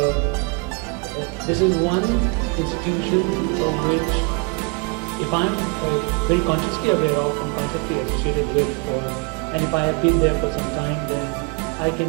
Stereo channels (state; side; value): quieter; left; 31.0 dB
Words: this is one institution of which, if I'm very consciously aware of and consciously associated with, and if I have been there for some time, then I